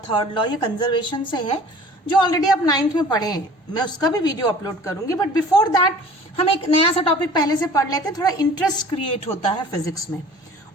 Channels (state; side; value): normal; both; correlation 0.46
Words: third law, ये कंजर्वेशन से है, जो ऑलरेडी आप 9th में पढ़े हैं। मैं उसका भी वीडियो अपलोड करूंगी, बट बिफोर दैट हम एक नया सा टॉपिक पहले से पढ़ लेते हैं। थोड़ा इंटरेस्ट क्रिएट होता है फिजिक्स में।